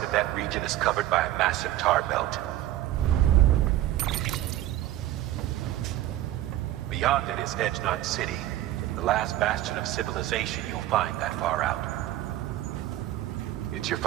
of that region is covered by a massive tar belt. Beyond it is Edgenut City, the last bastion of civilization you'll find that far out. It's your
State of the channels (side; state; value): left; quieter; 14.1 dB